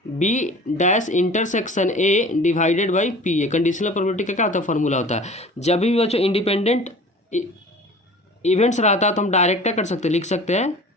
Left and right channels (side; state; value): both; normal; correlation 0.42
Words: B dash intersection A divided by P A. Conditional probability का क्या होता है, फॉर्मूला होता है। जब भी बच्चों इंडिपेंडेंट इवेंट्स रहता है तो हम डायरेक्ट क्या कर सकते हैं, लिख सकते हैं